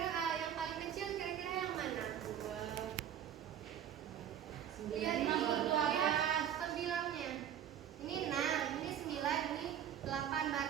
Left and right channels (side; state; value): left; quieter; 9.8 dB